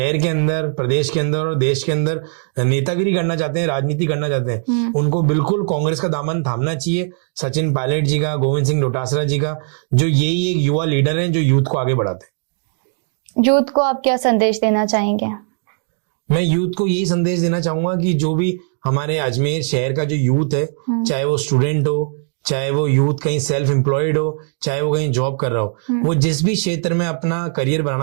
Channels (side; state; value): left; silent; digital silence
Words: के अंदर, प्रदेश के अंदर और देश के अंदर नेतागिरी करना चाहते हैं, राजनीति करना चाहते हैं, उनको बिल्कुल कांग्रेस का दामन थामना चाहिए। सचिन पायलट जी का, गोविंद सिंह डोटासरा जी का, जो यही एक युवा लीडर हैं जो यूथ को आगे बढ़ाते हैं। यूथ को आप क्या संदेश देना चाहेंगे? मैं यूथ को यही संदेश देना चाहूंगा कि जो भी हमारे अजमेर शहर का जो यूथ है, चाहे वो स्टूडेंट हो, चाहे वो यूथ कहीं सेल्फ एम्प्लॉयड हो, चाहे वो कहीं जॉब कर रहा हो, वो जिस भी क्षेत्र में अपना करियर